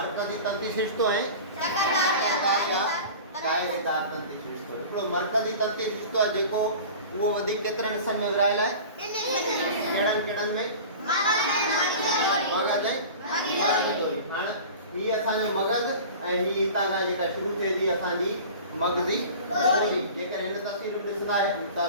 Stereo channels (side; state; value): both; inverted; correlation -0.37